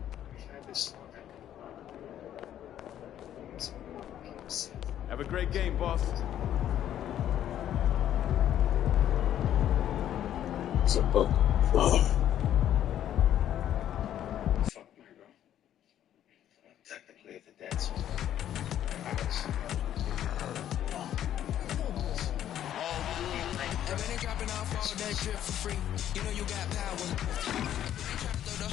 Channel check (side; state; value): right; quieter; 11.1 dB